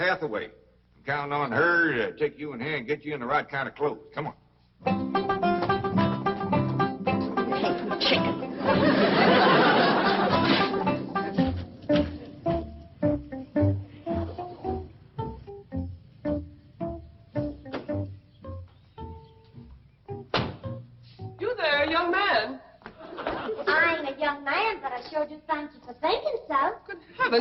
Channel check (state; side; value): identical; both; correlation 1.00